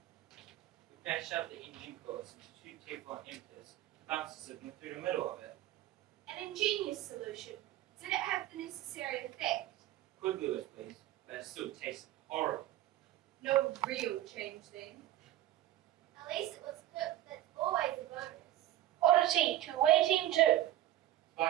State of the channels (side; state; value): left; quieter; 13.9 dB